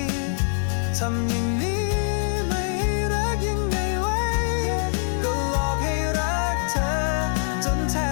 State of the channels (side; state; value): right; silent; digital silence